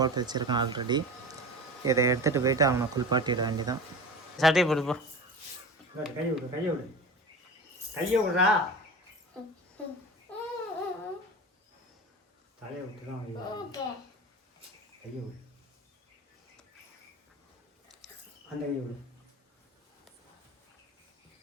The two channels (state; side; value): normal; both; correlation 0.31